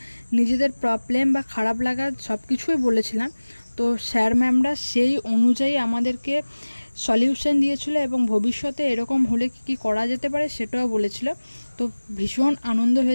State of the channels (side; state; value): both; inverted; correlation -1.00